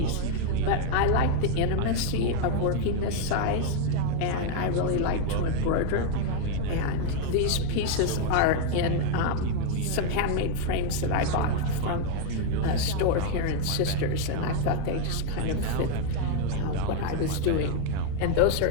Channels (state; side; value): different; both; correlation 0.00